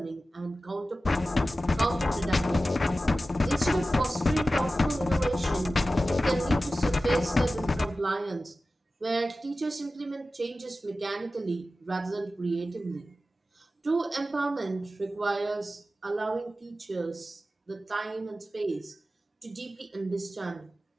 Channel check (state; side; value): normal; both; correlation 0.94